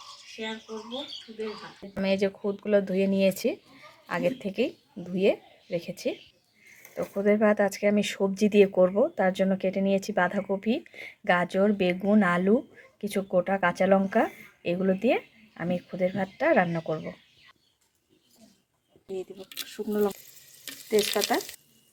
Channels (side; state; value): both; identical; correlation 1.00